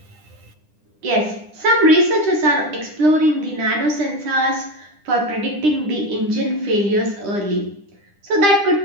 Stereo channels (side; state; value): left; late; 9.9 ms